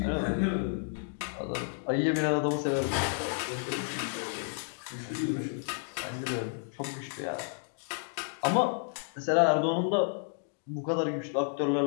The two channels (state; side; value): silent; right; digital silence